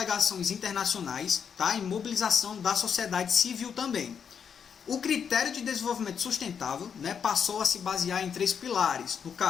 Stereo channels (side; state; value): right; quieter; 7.2 dB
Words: internacionais, tá, e mobilização da sociedade civil também. O critério de desenvolvimento sustentável, né, passou a se basear em 3 pilares, no